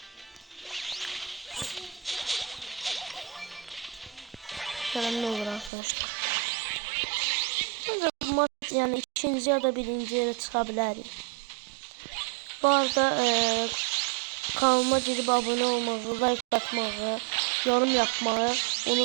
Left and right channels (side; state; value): left; drops out; at 5.7 s